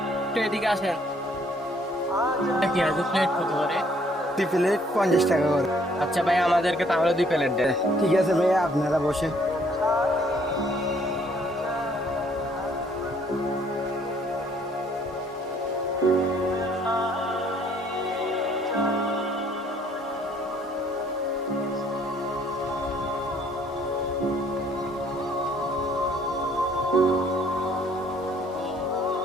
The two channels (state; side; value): normal; both; correlation 0.63